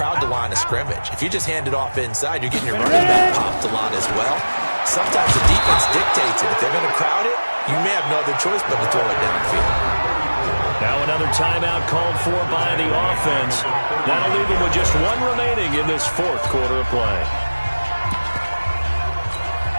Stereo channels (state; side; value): inverted; both; correlation -1.00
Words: the line of scrimmage. If you just hand it off inside, you're getting your running back popped a lot as well. Sometimes the defense dictates it. If they're going to crowd it, you may have no other choice but to throw it downfield. Now another timeout called for by the offense. That'll leave them with just 1 remaining in this 4th quarter of play.